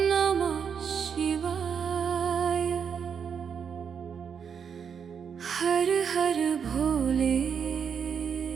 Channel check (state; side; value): quieter; left; 7.0 dB